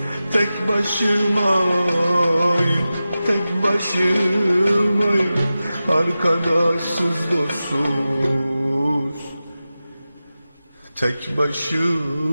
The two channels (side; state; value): both; inverted; correlation -0.94